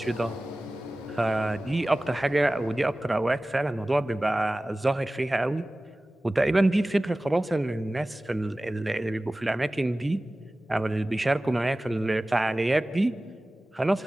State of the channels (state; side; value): normal; both; correlation 0.97